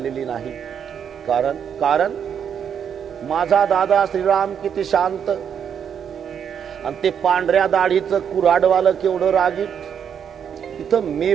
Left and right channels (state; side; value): quieter; left; 8.0 dB